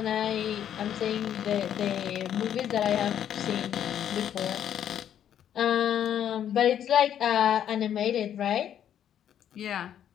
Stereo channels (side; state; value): right; quieter; 9.9 dB